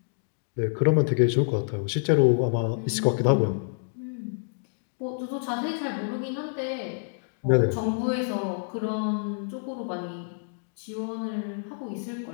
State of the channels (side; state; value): right; silent; digital silence